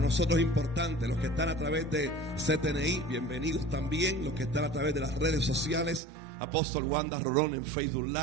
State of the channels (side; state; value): left; drops out; at 6.0 s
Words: es importante, los que están a través de CTNI, bienvenidos también, los que están a través de las redes sociales, Apóstol Wanda Rolón en Facebook